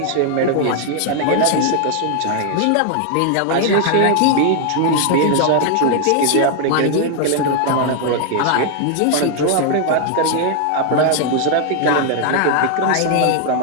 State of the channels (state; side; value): different; both; correlation 0.00